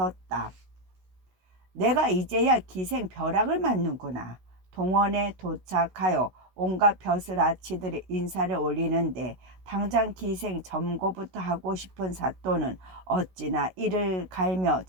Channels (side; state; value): left; late; 16 ms